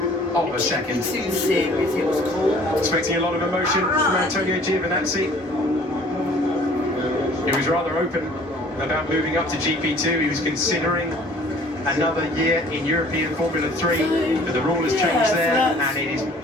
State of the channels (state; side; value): normal; both; correlation 0.52